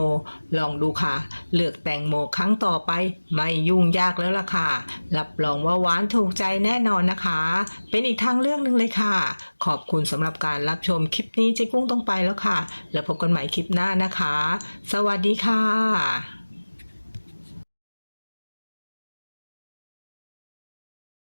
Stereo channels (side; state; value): both; inverted; correlation -1.00